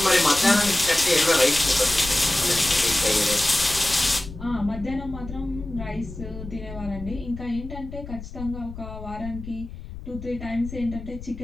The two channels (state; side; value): noise; left; rumble, 12 dB below the sound